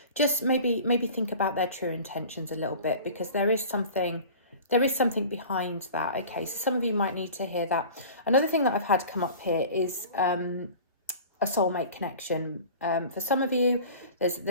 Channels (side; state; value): both; inverted; correlation -0.40